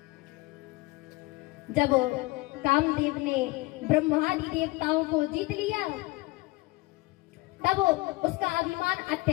जब कामदेव ने ब्रह्मादि देवताओं को जीत लिया तब उसका अभिमान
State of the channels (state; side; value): quieter; right; 22.8 dB